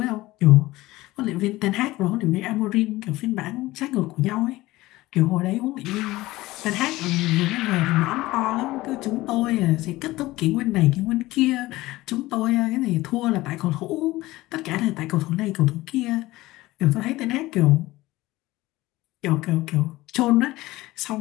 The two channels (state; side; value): quieter; right; 18.4 dB